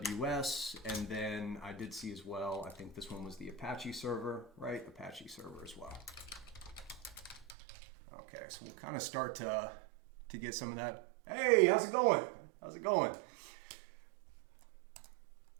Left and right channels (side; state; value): left; drops out; at 7.6 s